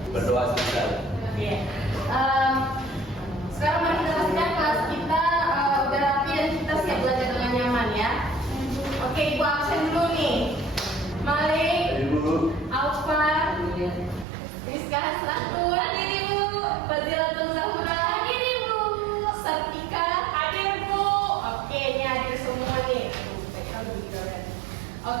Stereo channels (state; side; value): drops out; left; at 14.2 s